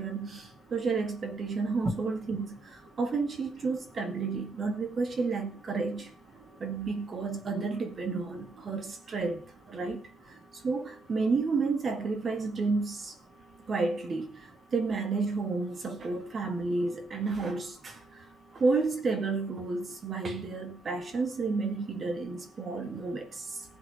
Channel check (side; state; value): left; quieter; 3.6 dB